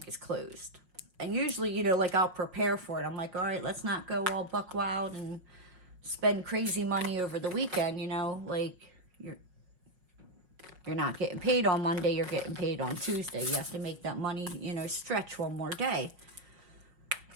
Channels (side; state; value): left; late; 5.5 ms